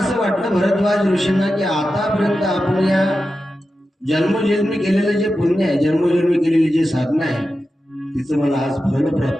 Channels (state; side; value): normal; both; correlation 0.91